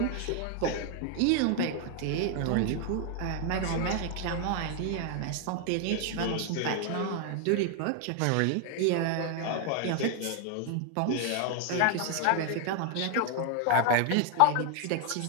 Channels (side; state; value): both; different; correlation 0.00